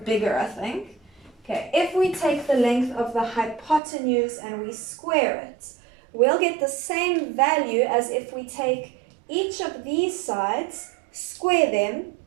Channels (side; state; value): left; drops out; at 3.8 s